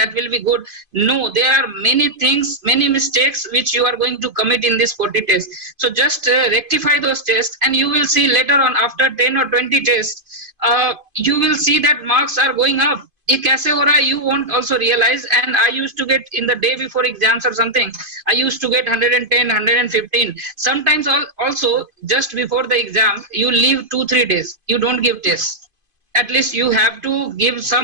will be good, no, there are many things, many mistakes which you are going to commit in this 40 tests. So just rectify those tests, and you will see later on, after 10 or 20 tests, you will see that marks are going up. ये कैसे हो रहा है, you won't also realize. And I used to get, in the day before exams or something, I used to get 110, 115. Sometimes also just before the exam, you leave 2-3 days, you don't give tests. at least you have to give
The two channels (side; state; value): left; late; 2.5 ms